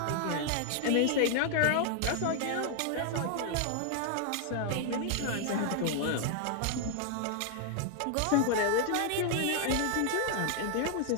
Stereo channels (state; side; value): different; both; correlation 0.00